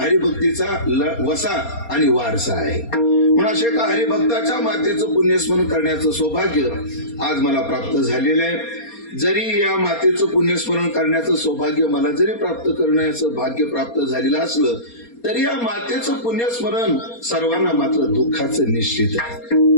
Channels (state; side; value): late; right; 4.3 ms